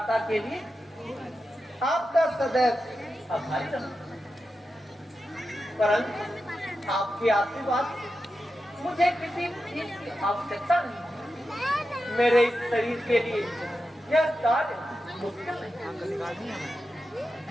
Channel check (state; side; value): normal; both; correlation 0.90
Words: के लिए आपका सदैव आभारी रहूंगा। परंतु आपके आशीर्वाद मुझे किसी चीज की आवश्यकता नहीं। मेरे इस शरीर के लिए यह कार्य मुश्किल नहीं।